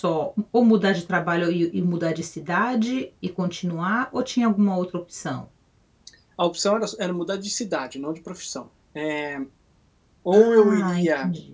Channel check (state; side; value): identical; both; correlation 1.00